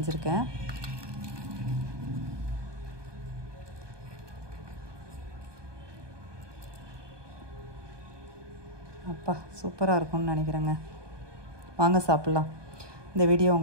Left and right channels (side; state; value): left; late; 1.2 ms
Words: அப்பா சூப்பராக இருக்கும்னு நினைக்கிறேங்க. வாங்க சாப்பிட்லாம். இந்த வீடியோ